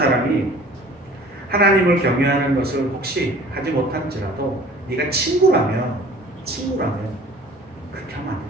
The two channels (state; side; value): normal; both; correlation 0.48